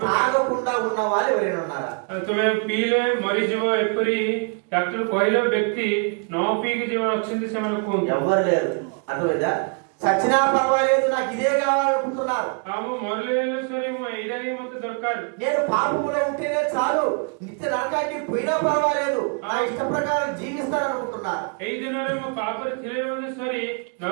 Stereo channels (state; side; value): quieter; left; 36.6 dB